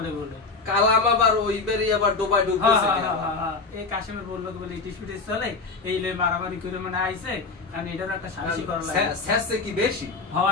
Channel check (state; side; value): quieter; right; 4.1 dB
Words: বলে। কালাম আবার ওই বেরি আবার ডোবাই ডুবতেছে। এই কাশেমের বললো বলে ইটিস পিটিস চলে, এই লই মারামারি করে মানে আইছে। কারণ এটার একটা সালিশি করা লাগে। শেষে কি বেশি